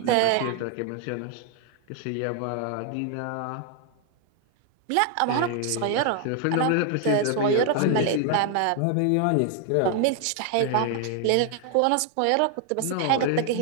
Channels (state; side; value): different; both; correlation 0.00